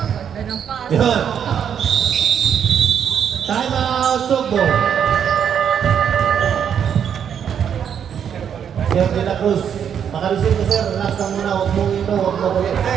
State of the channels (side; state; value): left; quieter; 8.3 dB